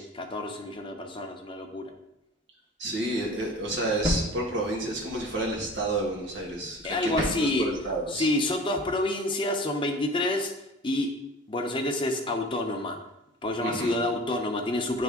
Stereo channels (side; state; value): both; normal; correlation 0.41